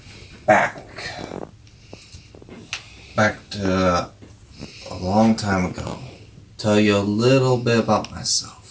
back to a long time ago. Tell you a little bit about myself.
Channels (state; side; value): identical; both; correlation 1.00